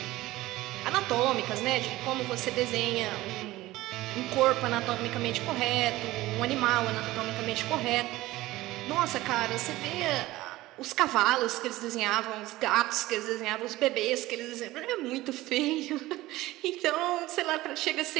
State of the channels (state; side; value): quieter; left; 17.7 dB